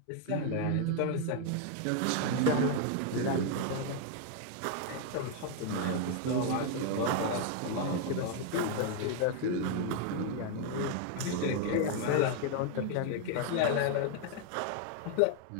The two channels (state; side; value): different; both; correlation 0.00